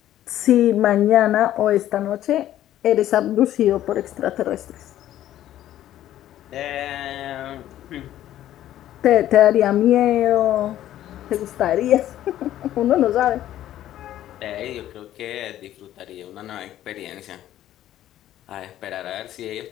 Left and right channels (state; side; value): quieter; right; 12.7 dB